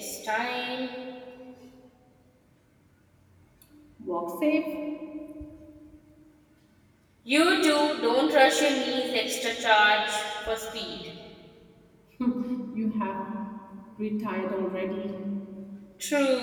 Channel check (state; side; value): identical; both; correlation 1.00